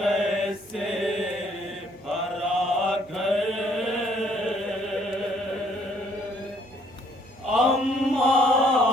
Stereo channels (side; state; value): right; noise; hum, 29 dB below the sound